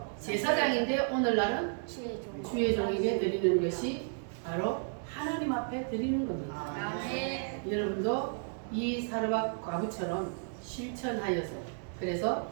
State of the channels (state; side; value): silent; left; 56 dB below the other